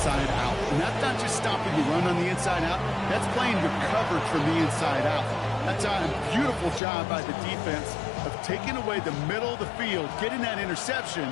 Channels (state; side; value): drops out; right; at 6.8 s